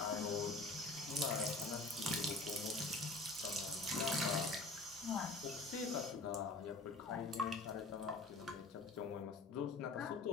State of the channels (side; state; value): right; quieter; 3.1 dB